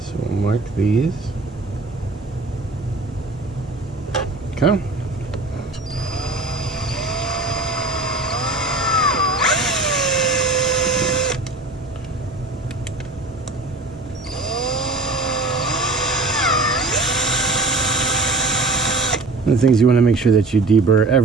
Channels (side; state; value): left; quieter; 3.1 dB